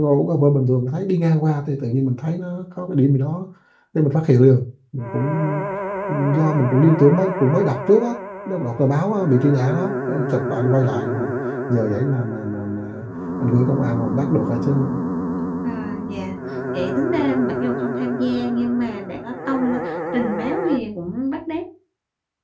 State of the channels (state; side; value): identical; both; correlation 1.00